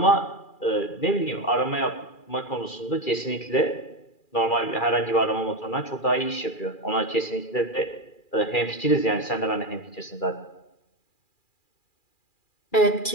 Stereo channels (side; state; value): right; late; 2.4 ms